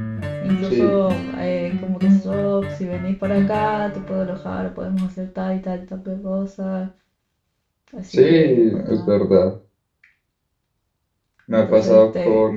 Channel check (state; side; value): identical; both; correlation 1.00